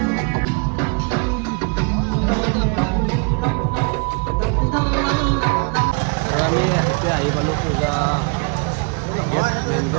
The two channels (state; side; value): quieter; left; 34.0 dB